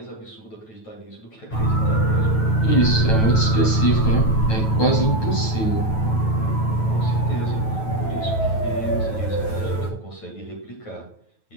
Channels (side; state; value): right; late; 9.2 ms